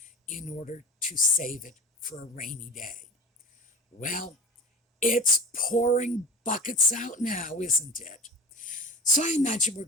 in order to save it for a rainy day. Well, it's pouring buckets out now, isn't it? So I imagine we're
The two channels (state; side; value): normal; both; correlation 0.33